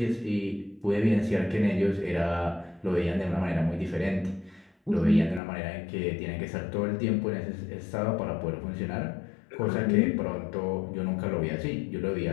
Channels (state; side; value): drops out; right; at 5.4 s